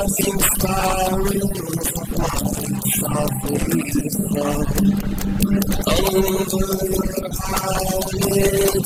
spirals of white softly flow over your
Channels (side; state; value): both; identical; correlation 1.00